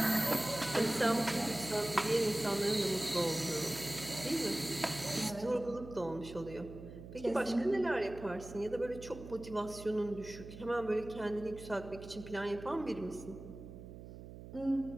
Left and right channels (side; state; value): right; noise; hum, 13 dB below the sound